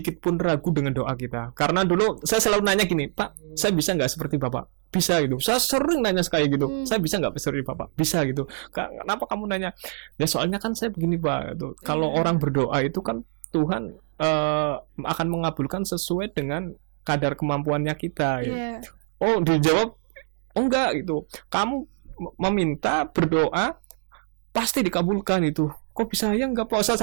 pun ragu dengan doa kita, karena dulu saya selalu nanya gini, Pak, saya bisa nggak seperti Bapak? Bisa gitu, saya sering nanya kayak gitu, saya bisa nggak seperti Bapak? Bisa gitu. Kenapa kamu nanya? Ya soalnya kan saya begini Pak, gitu. Kalau orang berdoa itu kan Tuhan akan mengabulkan sesuai dengan kadar kemampuannya kita. Gitu. Iya. Oh, dijawab, oh enggak gitu. Kamu meminta berdoa pasti dikabulkan itu. Kok bisa ya enggak, puasa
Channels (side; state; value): left; silent; 62 dB below the other